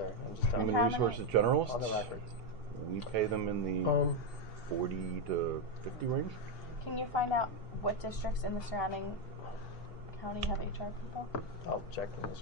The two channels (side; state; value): both; normal; correlation 0.05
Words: I'm just telling Human you. resources generalists, On the record. we pay them in the 40 to 50 range. Can you find out what districts in the surrounding county have HR people? I'll check in this.